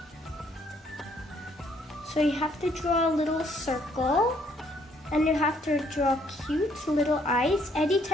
So you have to draw a little circle, and you have to draw cute little eyes, any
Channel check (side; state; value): both; normal; correlation 0.67